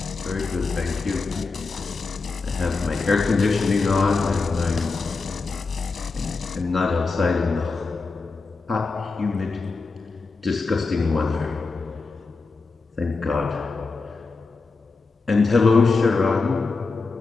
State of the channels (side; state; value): right; quieter; 4.1 dB